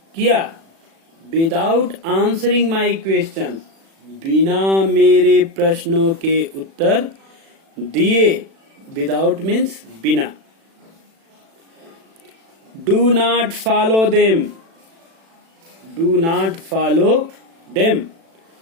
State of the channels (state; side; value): late; left; 36 ms